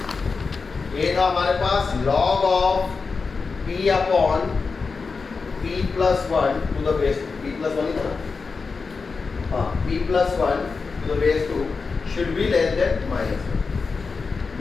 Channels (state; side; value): quieter; right; 4.7 dB